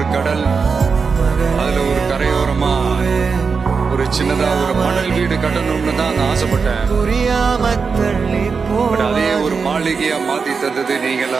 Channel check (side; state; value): left; quieter; 5.2 dB